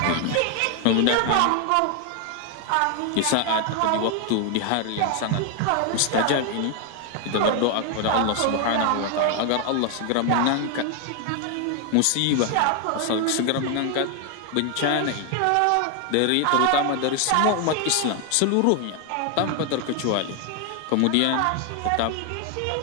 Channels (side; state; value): both; different; correlation 0.01